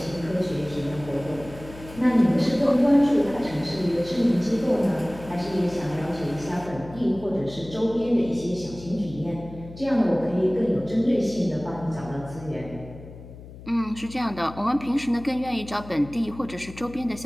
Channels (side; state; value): left; noise; hum, 16 dB below the sound